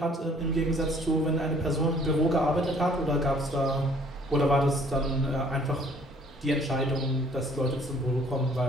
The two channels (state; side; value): normal; both; correlation 0.59